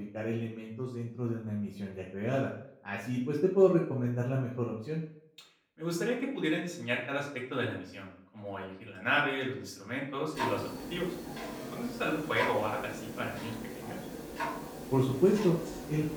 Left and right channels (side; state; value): both; identical; correlation 1.00